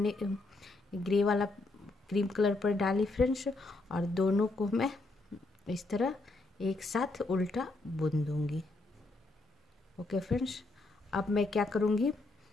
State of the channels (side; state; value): right; quieter; 3.1 dB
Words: क्रीम कलर पर डाली फ्रेंड्स, और दोनों को मैं इस तरह एक साथ उल्टा बुन दूंगी। ओके फ्रेंड्स, अब मैं क्या करूँगी,